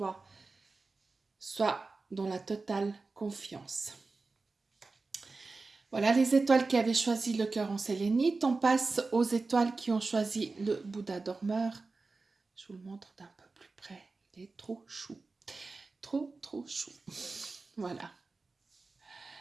sois dans la totale confiance. Voilà les étoiles qui avaient choisi le cœur en sélénite. On passe aux étoiles qui ont choisi le Bouddha dormeur. Je vous le montre d'un peu plus près. Il est trop chou. Trop, trop chou. Voilà.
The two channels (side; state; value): left; quieter; 3.8 dB